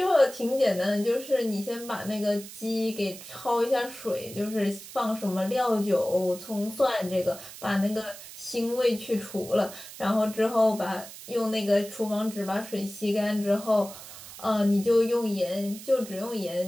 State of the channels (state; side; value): noise; right; hiss, 14 dB below the sound